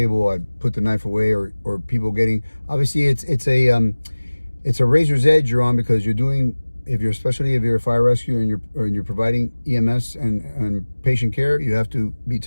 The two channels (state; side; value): inverted; both; correlation -1.00